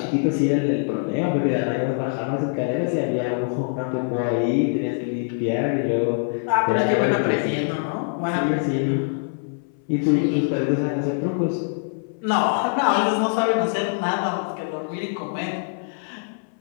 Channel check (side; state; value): right; silent; 58 dB below the other